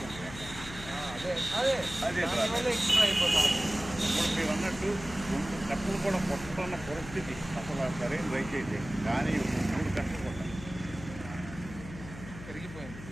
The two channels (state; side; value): noise; left; hum, 13 dB below the sound